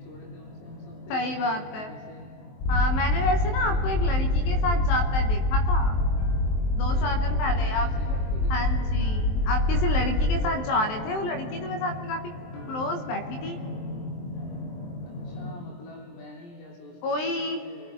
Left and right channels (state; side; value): late; right; 23 ms